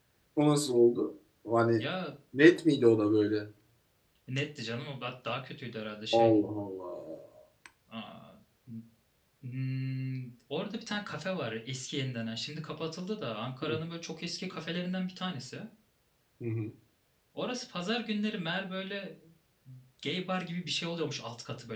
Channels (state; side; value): identical; both; correlation 1.00